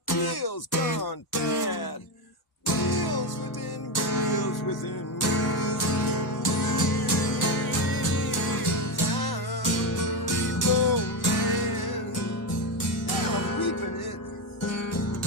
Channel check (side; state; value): both; normal; correlation 0.12